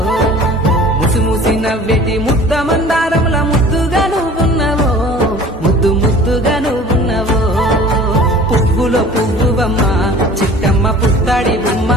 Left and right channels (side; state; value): both; normal; correlation 0.45